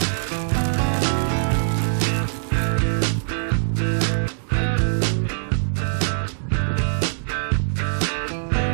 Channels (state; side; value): silent; left; digital silence